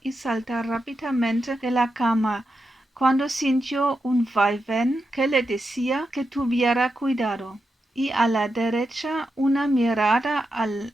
y saltar rápidamente de la cama, cuando sintió un vaivén que le decía que tuviera cuidado, y a la derecha una mirada al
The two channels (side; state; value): both; normal; correlation 0.87